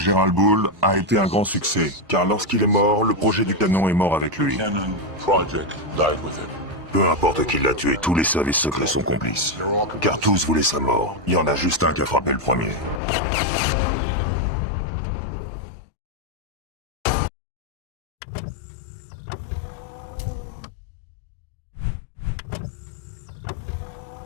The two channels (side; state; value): right; drops out; at 13.0 s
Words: Bull a été un grand succès, car lorsqu'il est mort, le projet du canon est mort avec lui. Peu importe qui l'a tué, tous les services secrets sont complices. Car tous voulaient sa mort. Il y en a juste un qui a frappé le premier.